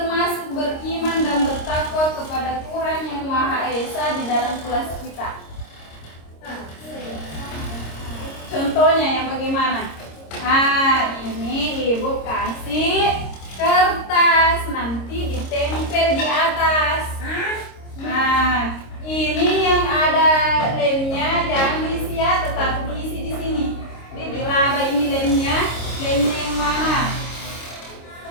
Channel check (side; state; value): right; late; 26 ms